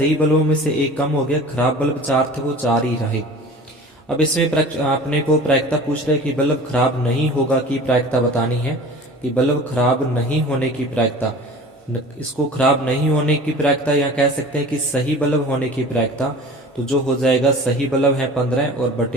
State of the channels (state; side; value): normal; both; correlation 0.41